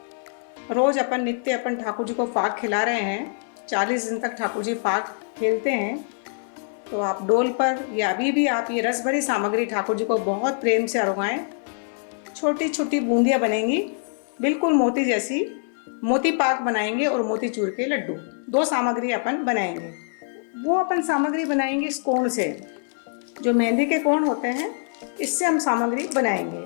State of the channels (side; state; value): right; silent; digital silence